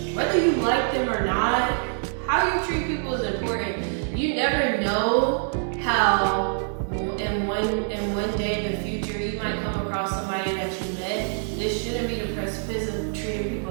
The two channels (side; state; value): left; silent; 61 dB below the other